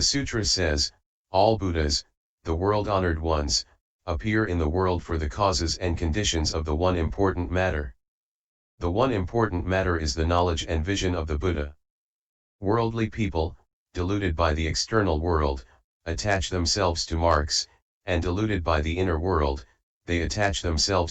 sutra says, all Buddhas, the world-honored ones, appear in the world for the causes and conditions of the one important matter. The one important matter is the knowledge and vision of the Buddha. Worldly people, deluded by the external world, attach themselves to marks, and deluded by the inner world, they attach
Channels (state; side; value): identical; both; correlation 1.00